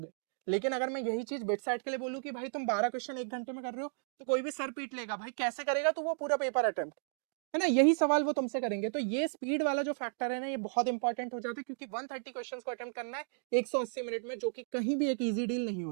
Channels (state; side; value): silent; left; digital silence